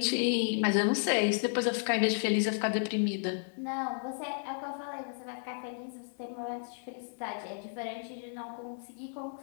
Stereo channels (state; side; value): silent; right; digital silence